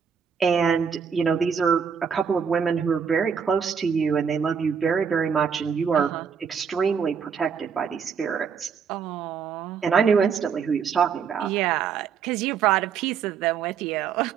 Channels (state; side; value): quieter; left; 6.7 dB